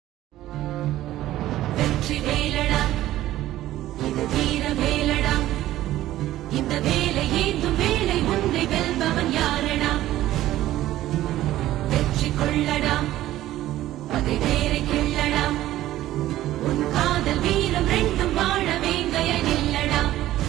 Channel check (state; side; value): quieter; left; 14.5 dB